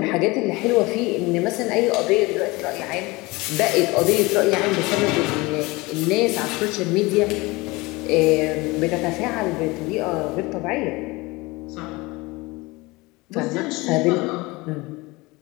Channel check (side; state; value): right; quieter; 23.0 dB